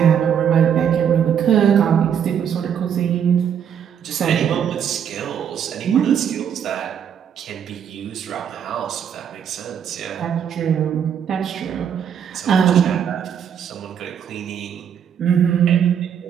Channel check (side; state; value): left; quieter; 8.4 dB